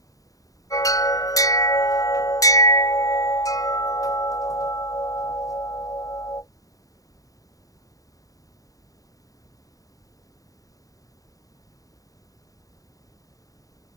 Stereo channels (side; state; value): right; late; 0.17 ms